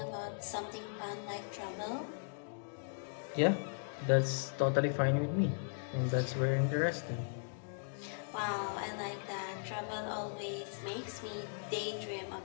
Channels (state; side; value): silent; right; digital silence